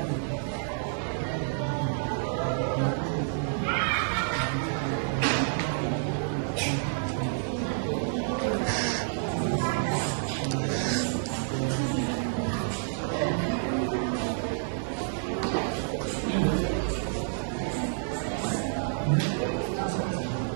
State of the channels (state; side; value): silent; left; digital silence